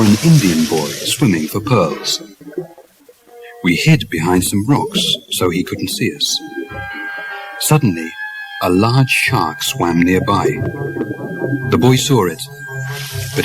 an Indian boy swimming for pearls. We hid behind some rocks so he couldn't see us. Suddenly, a large shark swam nearby. The boy saw it, but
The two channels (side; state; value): both; identical; correlation 1.00